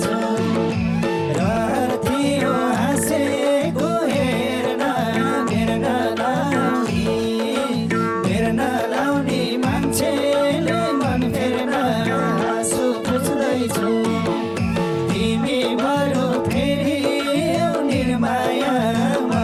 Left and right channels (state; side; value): identical; both; correlation 1.00